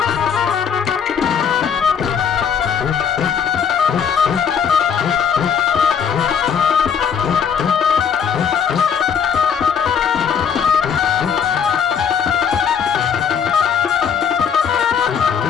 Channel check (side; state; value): right; quieter; 7.2 dB